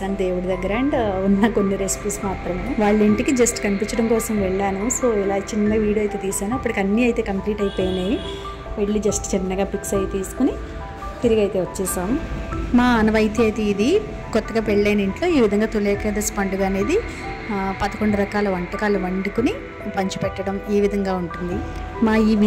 దేవుడి దగ్గర అండ్ ఉన్న కొన్ని రెసిపీస్ మాత్రమే. వాళ్ళ ఇంటికి జస్ట్ కనిపించడం కోసం వెళ్ళాను. సో ఇలా చిన్న వీడియో అయితే తీశాను. అప్పటికి అన్నీ అయితే కంప్లీట్ అయిపోయినాయి. వెళ్ళి జస్ట్ చిన్నగా పిక్స్ అయితే తీసుకుని తిరిగి అయితే వచ్చేసాం. మా ఆనవాయితీ అయితే ఇది. కొత్తగా పెళ్ళైన ఇంట్లో ఈ విధంగా తొలి ఏకాదశి పండుగ అనేది 11 రకాల వంటకాలు వండుకుని పంచిపెట్టడం ఈ విధంగా ఉంటుంది. మా ఈ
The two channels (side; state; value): both; identical; correlation 1.00